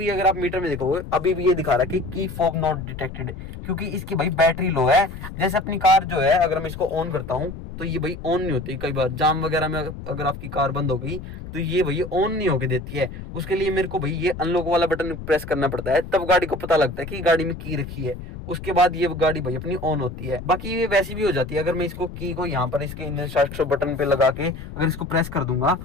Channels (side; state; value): left; noise; rumble, 11 dB below the sound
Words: अगर आप मीटर में देखोगे अभी भी ये दिखा रहा है कि की फॉब नॉट डिटेक्टेड, क्योंकि इसकी भाई बैटरी लो है। जैसे अपनी कार जो है अगर मैं इसको ऑन करता हूँ तो ये भाई ऑन नहीं होती। कई बार जाम वगैरह में अगर आपकी कार बंद हो गई तो ये भाई ऑन नहीं होके देती है। उसके लिए मेरे को भाई ये अनलॉक वाला बटन प्रेस करना पड़ता है, तब गाड़ी को पता लगता है कि गाड़ी में की रखी है। उसके बाद ये गाड़ी भाई अपनी ऑन होती है। बाकी ये वैसी भी हो जाती है। अगर मैं इसको की को यहाँ पर इसके इंजन स्टार्ट बटन पे लगा के अगर इसको प्रेस कर दूंगा